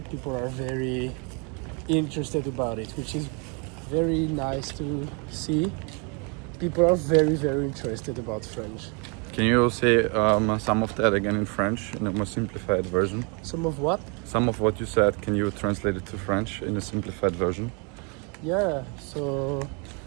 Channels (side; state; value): left; quieter; 34.2 dB